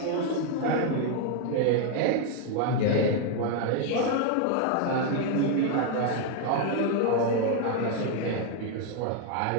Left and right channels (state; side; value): different; both; correlation 0.01